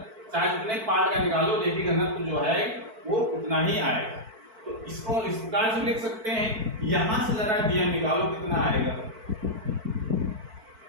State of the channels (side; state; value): left; late; 4.5 ms